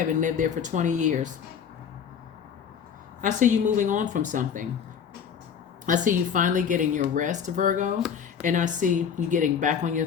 lived there for 20 years. I see you moving on from something. I see you finally getting your rest, Virgo, and I see you getting back on your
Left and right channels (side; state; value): right; quieter; 7.5 dB